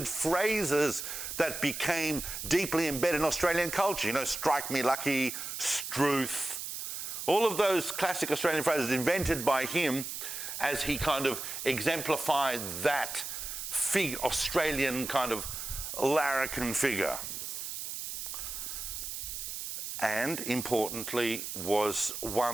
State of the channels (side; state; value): right; noise; hiss, 6 dB below the sound